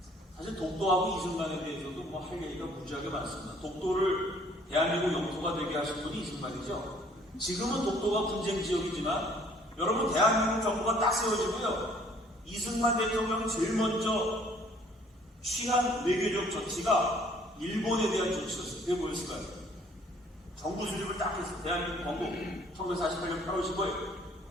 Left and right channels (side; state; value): both; normal; correlation 0.59